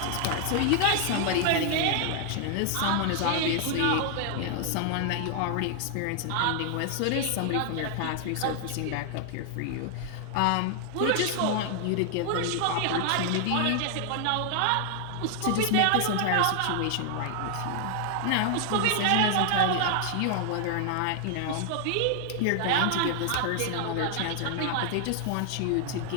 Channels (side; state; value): both; different; correlation 0.00